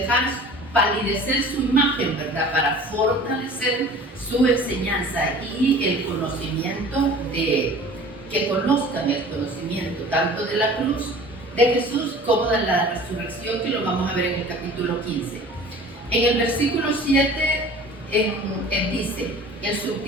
palidecer su imagen, ¿verdad? Para fortalecer su enseñanza y el conocimiento que conozcan el conocimiento tanto de la cruz de Jesús como de la resurrección, que lo vamos a ver en el capítulo 15. En el versículo 7 dice, el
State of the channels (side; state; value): both; normal; correlation 0.44